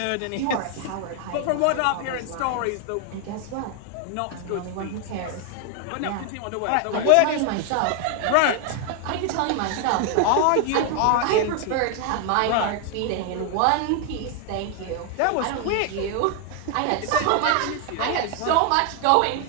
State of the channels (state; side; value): different; both; correlation 0.00